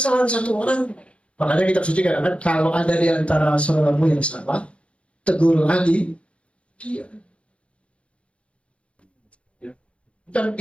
satu orang. Makanya kita suci katakan kalau ada di antara saudaramu yang salah, tegur lagi dia. Dan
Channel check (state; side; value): late; right; 0.060 ms